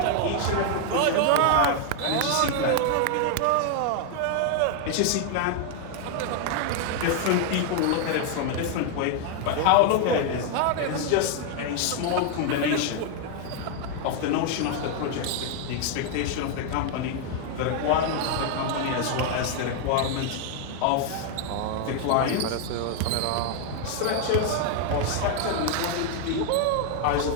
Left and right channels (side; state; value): both; different; correlation 0.00